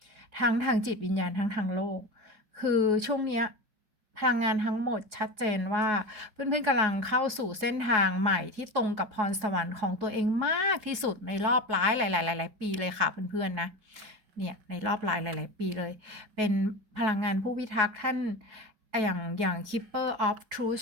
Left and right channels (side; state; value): left; late; 4.7 ms